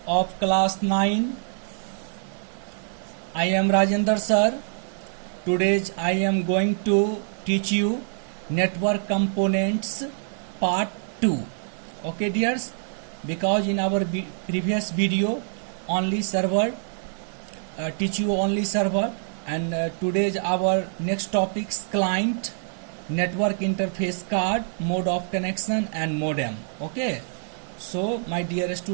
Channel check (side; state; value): left; silent; digital silence